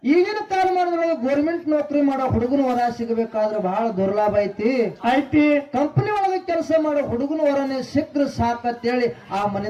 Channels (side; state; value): both; identical; correlation 1.00